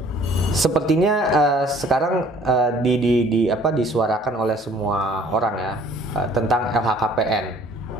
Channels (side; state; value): both; normal; correlation 0.55